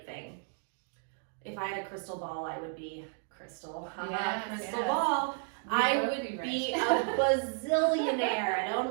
thing. If I had a crystal ball, I would be crystal ball. I would be a bazillionaire. I'd own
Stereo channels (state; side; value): silent; left; 56 dB below the other